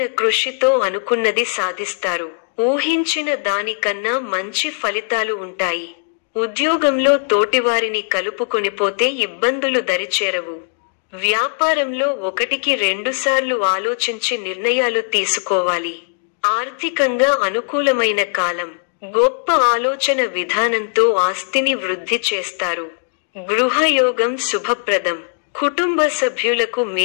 కృషితో అనుకున్నది సాధిస్తారు. ఊహించిన దానికన్నా మంచి ఫలితాలు ఉంటాయి. ఉద్యోగంలో తోటివారిని కలుపుకొనిపోతే ఇబ్బందులు దరిచేరవు. వ్యాపారంలో 1-2 సార్లు ఆలోచించి నిర్ణయాలు తీసుకోవాలి. ఆర్థికంగా అనుకూలమైన కాలం. గొప్ప ఆలోచన విధానంతో ఆస్తిని వృద్ధి చేస్తారు. గృహయోగం శుభప్రదం. కుటుంబ సభ్యులకు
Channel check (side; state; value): right; silent; digital silence